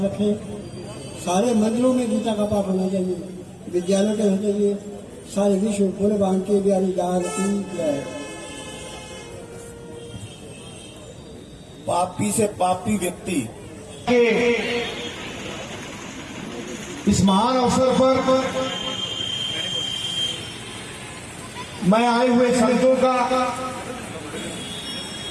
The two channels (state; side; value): identical; both; correlation 1.00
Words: रखें। सारे मंदिरों में गीता का पाठ होना चाहिए, विद्यालयों के होना चाहिए। सारे विश्व पूरे बांके बिहारी दान की जय। पापी से पापी व्यक्ति के इस महान अवसर पर मैं आए हुए संतों का